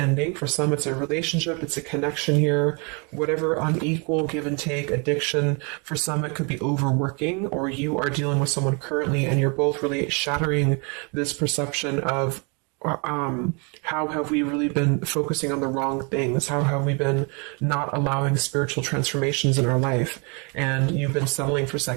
For some, it's a relationship. It's a connection here. Whatever unequal give and take, addiction. For some, it could be overworking, or you are dealing with someone currently and you're both really shattering this perception of how have we really been focusing on the wrong things? How have we been not allowing spiritual transformations in our life? And you've been settling for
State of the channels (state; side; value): quieter; left; 33.5 dB